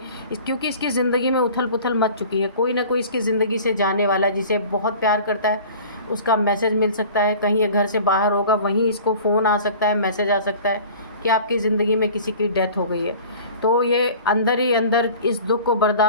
क्योंकि इसकी ज़िंदगी में उथल पुथल मच चुकी है, कोई ना कोई इसकी ज़िंदगी से जाने वाला जिसे बहुत प्यार करता है, उसका मैसेज मिल सकता है। कहीं ये घर से बाहर होगा, वहीं इसको फ़ोन आ सकता है, मैसेज आ सकता है कि आपकी ज़िंदगी में किसी की डेथ हो गई है। तो ये अंदर ही अंदर इस दुख को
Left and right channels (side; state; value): both; inverted; correlation -0.44